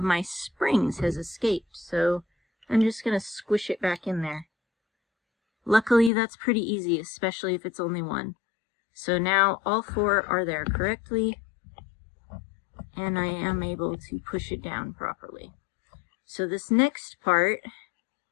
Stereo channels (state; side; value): drops out; right; at 6.1 s